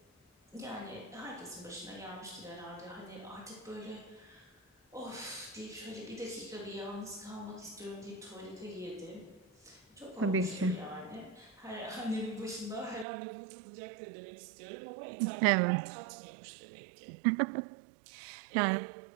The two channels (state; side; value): drops out; left; at 13.1 s